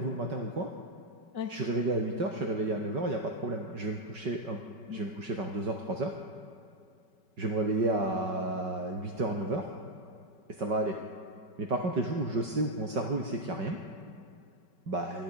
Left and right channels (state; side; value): late; left; 5.3 ms